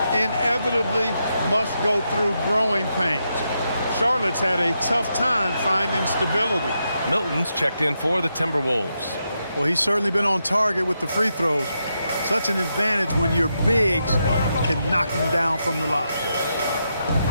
inevitably must go through growing pains. Charlotte's had a tough time finding stability. Milton's checked in for the Timberwolves. Well, he's certainly been on target with the free throws. Such an advantage when your bigs can knock them down from the line.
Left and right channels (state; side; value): inverted; both; correlation -0.84